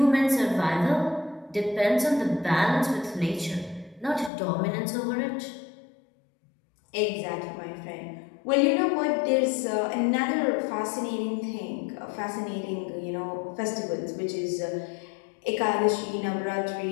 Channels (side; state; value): right; drops out; at 4.3 s